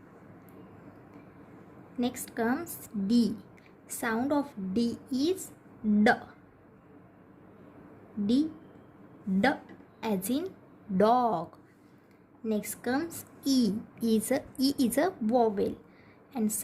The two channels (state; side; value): identical; both; correlation 1.00